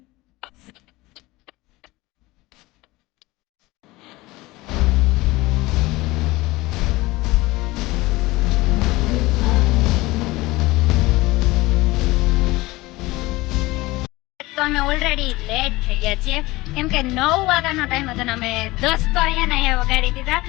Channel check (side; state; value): right; quieter; 20.4 dB